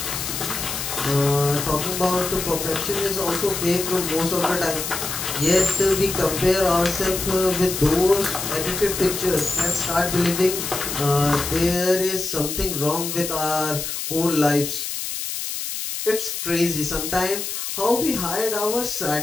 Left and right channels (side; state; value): left; noise; hiss, 4 dB below the sound